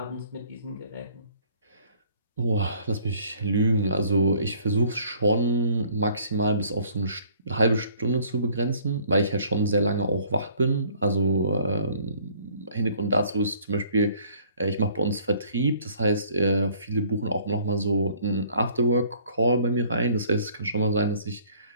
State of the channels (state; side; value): inverted; both; correlation -0.58